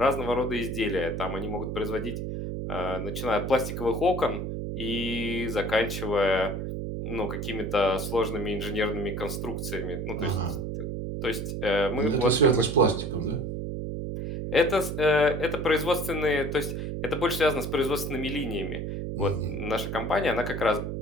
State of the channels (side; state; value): right; noise; hum, 4 dB below the sound